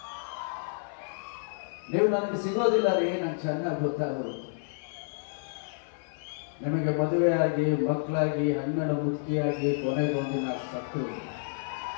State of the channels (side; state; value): right; silent; 58 dB below the other